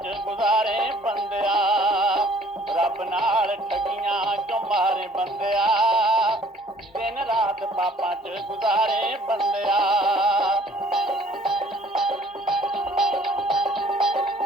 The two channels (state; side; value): normal; both; correlation 0.57